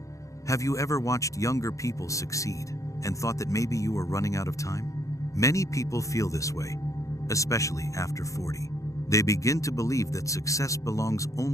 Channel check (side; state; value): right; late; 0.15 ms